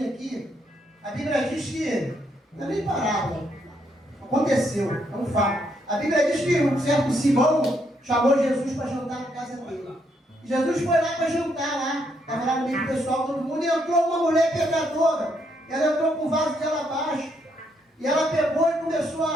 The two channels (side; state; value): both; normal; correlation 0.75